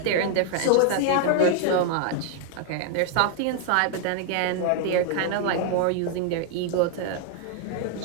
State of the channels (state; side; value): different; both; correlation 0.00